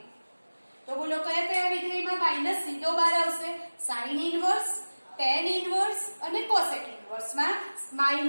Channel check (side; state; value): both; inverted; correlation -1.00